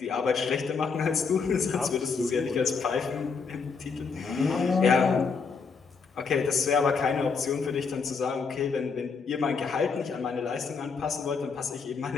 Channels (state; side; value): quieter; right; 5.2 dB